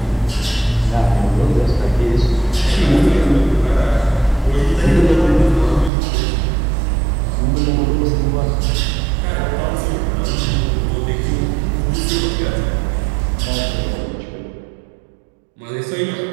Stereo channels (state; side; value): drops out; left; at 5.9 s